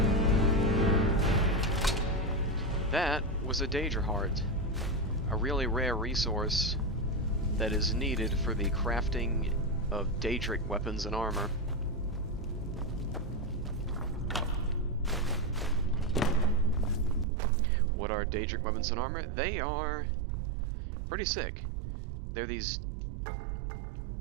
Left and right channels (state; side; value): drops out; left; at 17.2 s